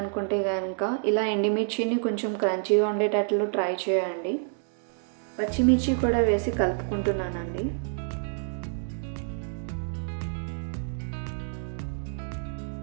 కనుక ఇలా ఎండుమిర్చిని కొంచెం క్రంచీగా ఉండేటట్లు ట్రై చేయండి. పచ్చిమిర్చి కూడా వేసి కలుపుకుంటున్నానండి.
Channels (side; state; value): left; silent; digital silence